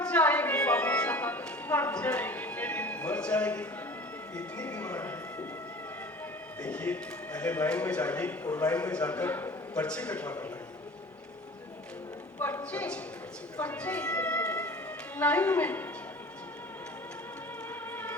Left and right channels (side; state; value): both; normal; correlation 0.42